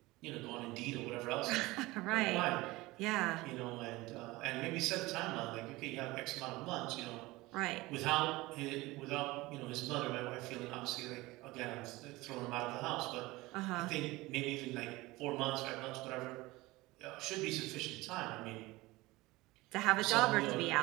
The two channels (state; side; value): quieter; left; 20.4 dB